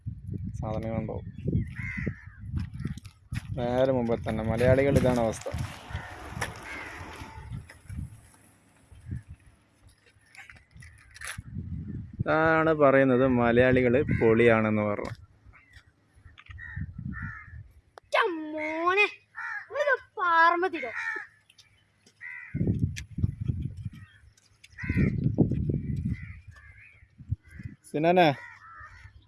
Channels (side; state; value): both; identical; correlation 1.00